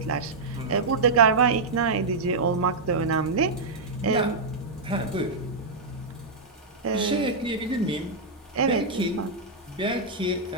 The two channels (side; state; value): left; quieter; 3.5 dB